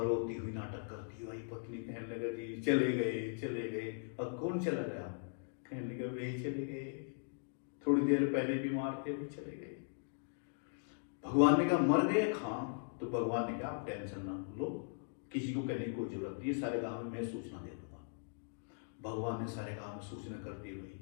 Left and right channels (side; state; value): right; silent; digital silence